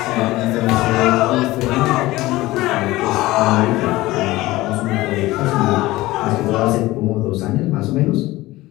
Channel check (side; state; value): right; quieter; 18.3 dB